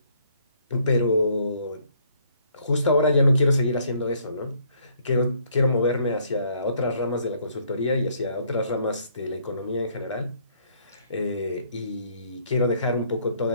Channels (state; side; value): inverted; both; correlation -0.65